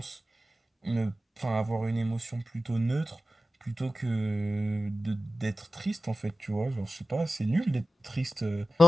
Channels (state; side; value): normal; both; correlation 0.95